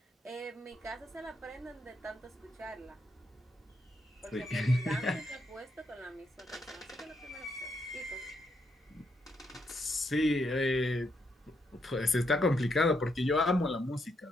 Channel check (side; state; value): both; normal; correlation 0.78